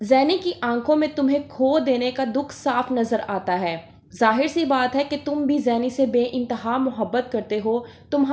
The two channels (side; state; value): both; identical; correlation 1.00